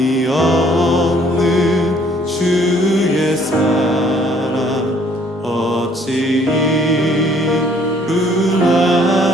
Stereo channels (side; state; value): both; normal; correlation 0.61